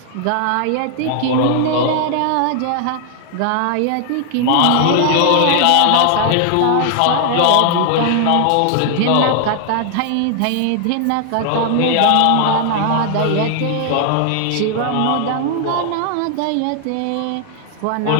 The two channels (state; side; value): different; both; correlation 0.00